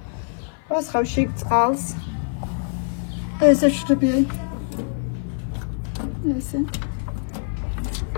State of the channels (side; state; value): right; silent; 57 dB below the other